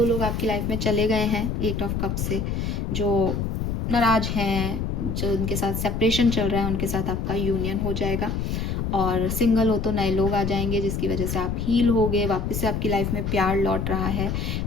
लोग आपकी लाइफ में चले गए हैं 8 ऑफ कप से, जो नाराज हैं, जो उनके साथ सेपरेशन चल रहा है, उनके साथ आपका यूनियन हो जाएगा। और सिंगल हो तो नए लोग आ जाएंगे जिसकी वजह से आप हील होगे, वापस से आपकी लाइफ में प्यार लौट रहा है।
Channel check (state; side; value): noise; left; rumble, 2 dB below the sound